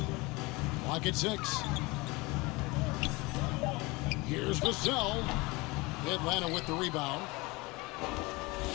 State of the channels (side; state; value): right; quieter; 24.1 dB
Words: Lock at 6. Here's Vassell. Atlanta with the rebound.